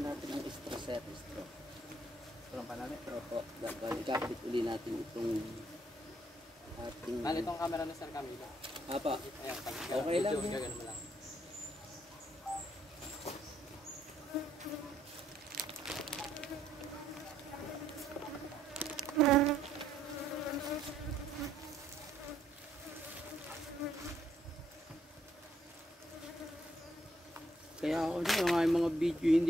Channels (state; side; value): normal; both; correlation 0.71